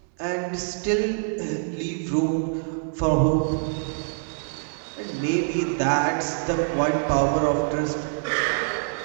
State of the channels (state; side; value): silent; left; digital silence